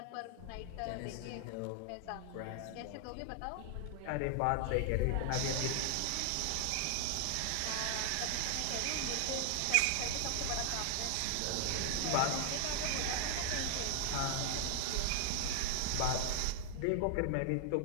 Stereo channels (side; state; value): both; different; correlation -0.01